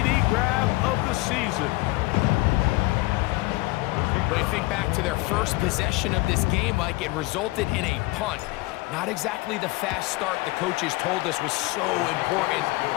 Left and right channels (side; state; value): right; quieter; 21.9 dB